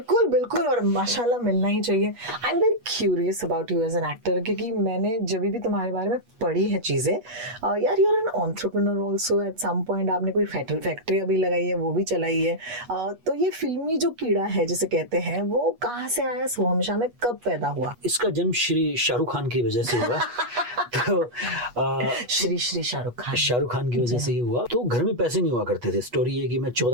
बिल्कुल, और माशाल्लाह मिलना ही चाहिए। I am very curious about you as an actor, क्योंकि मैंने जब भी तुम्हारे बारे में पढ़ी है चीजें, यार you are an entrepreneur also. At some point आपने कोई फैक्ट्री अभी लगाई है, वो भी चलाई है। तो ये फिल्मी जो कीड़ा है जिसे कहते हैं वो कहाँ से आया, सोहम शाह में कब पैदा हुआ? इसका जन्म श्री शाहरुख खान की वजह से हुआ। तो श्री शाहरुख खान की वजह से ही हुआ। तो घर में पैसे नहीं हुआ करते थे। स्टोरी ये कि मैं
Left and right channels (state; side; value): late; left; 8.3 ms